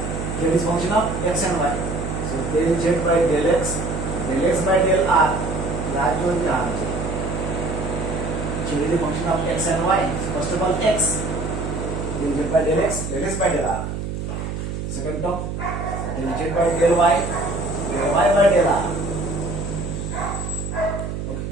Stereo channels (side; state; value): right; noise; hum, 5 dB below the sound